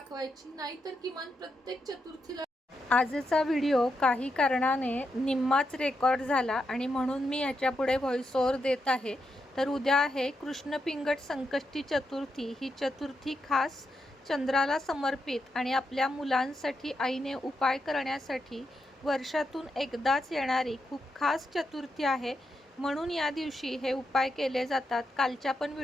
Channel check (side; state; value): both; normal; correlation 0.84